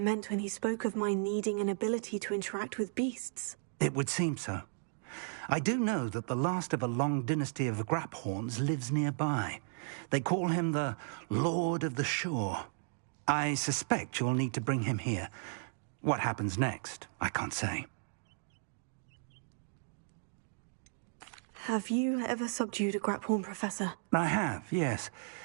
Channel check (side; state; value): left; silent; digital silence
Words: meant when he spoke of my needing an ability to interact with beasts. It would seem so. I do know that the last of a long dynasty of graphorns lives nearby. They call him the Lord of the Shore. I suspect you'll need to bring him here. What happens next, I can't say. Have you ever subdued a Graphorn, Professor? I have, yes.